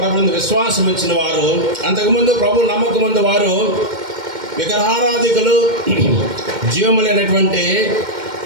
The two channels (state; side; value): late; left; 2.1 ms